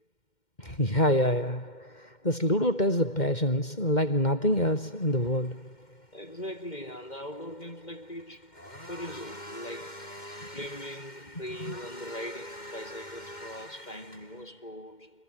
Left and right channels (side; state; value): right; late; 2.1 ms